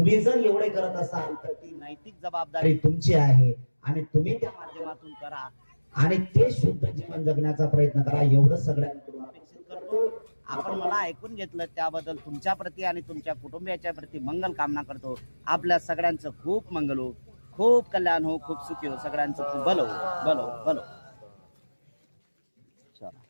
जर एवढे करत असाल तर ती नैतिक जबाबदारी तुमची आहे आणि तुम्ही त्या माध्यमातून करा आणि ते शुद्ध जीवन जगण्याचा प्रयत्न करा. एवढं सगळ्यांकडून अपेक्षित करतो. आपण मला ऐकून घेतलं त्याबद्दल तुमच्या प्रती आणि तुमच्या कुटुंबियाच्या प्रती मंगल कामना करतो. आपल्या सगळ्यांचं खूप मंगल हो, खूप कल्याण हो, खूप सुखी हो, सगळ्यांचं खूप भलो भलो भलो.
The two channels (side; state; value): both; inverted; correlation -1.00